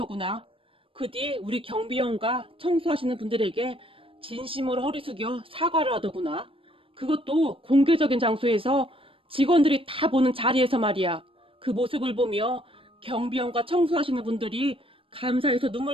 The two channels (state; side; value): late; left; 0.26 ms